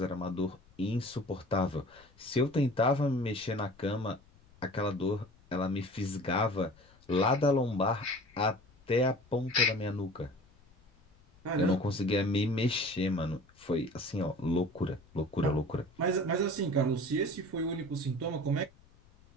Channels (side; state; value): left; noise; rumble, 28 dB below the sound